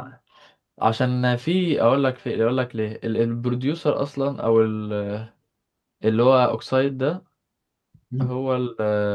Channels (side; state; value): both; identical; correlation 1.00